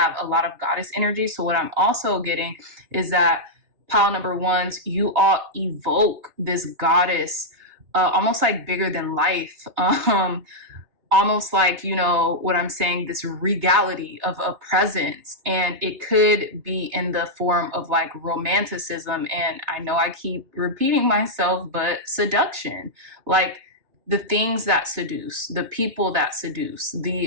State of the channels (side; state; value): left; late; 2.6 ms